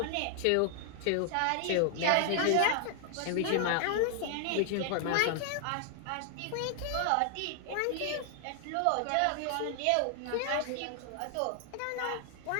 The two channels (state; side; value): different; both; correlation 0.00